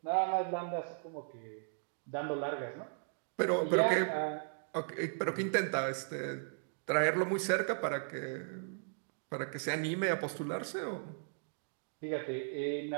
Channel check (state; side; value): silent; left; digital silence